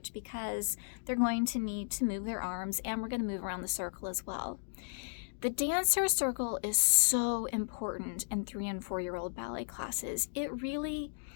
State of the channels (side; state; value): right; silent; digital silence